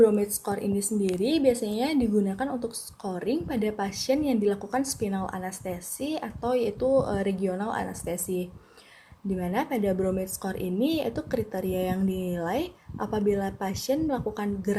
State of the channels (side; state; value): both; identical; correlation 1.00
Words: score ini sendiri biasanya digunakan untuk scoring pada pasien yang dilakukan spinal anestesi atau yaitu regional anestesi. Di mana pada Bromide score ini yaitu kriteria yang dinilai apabila pasien melakukan